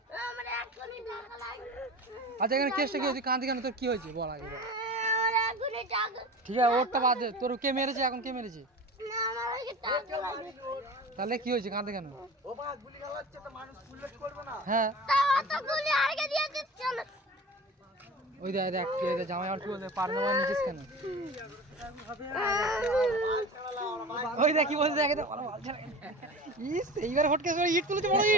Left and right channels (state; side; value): normal; both; correlation 0.34